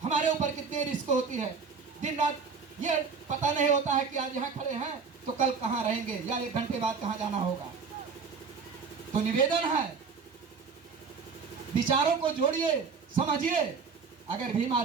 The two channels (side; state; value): left; quieter; 5.3 dB